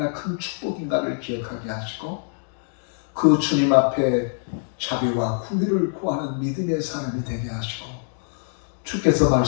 큰 축복인가를 기억하게 하시고 그 주님 앞에 자비와 구위를 구하는 믿음의 사람이 되게 하시고 주께서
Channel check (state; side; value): silent; right; digital silence